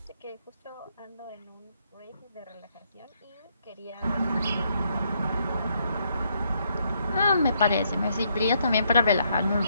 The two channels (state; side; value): inverted; both; correlation -0.74